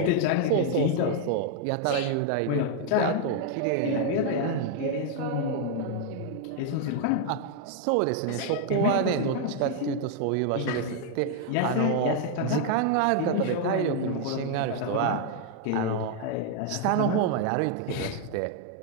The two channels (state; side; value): different; both; correlation 0.00